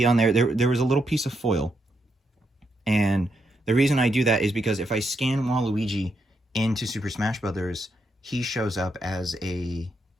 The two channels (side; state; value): both; normal; correlation 0.80